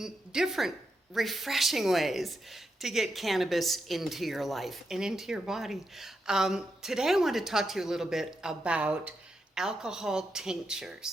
different refreshing ways to get cannabis into your life and into your body. Today I want to talk to you a little bit about alcohol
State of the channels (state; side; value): normal; both; correlation 0.85